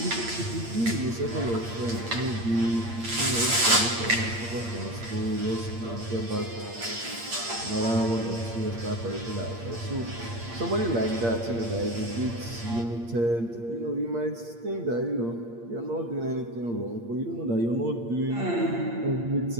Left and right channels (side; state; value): left; late; 8.6 ms